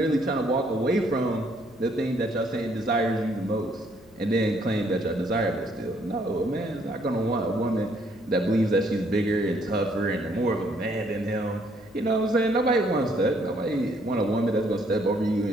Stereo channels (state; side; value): noise; left; hum, 26 dB below the sound